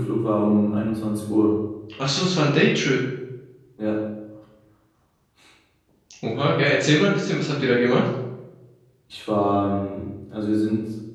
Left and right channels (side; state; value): both; identical; correlation 1.00